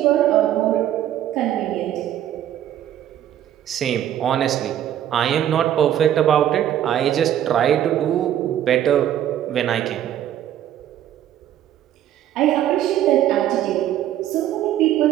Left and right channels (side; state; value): left; quieter; 11.4 dB